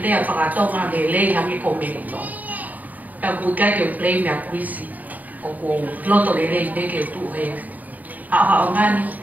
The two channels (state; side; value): late; left; 0.079 ms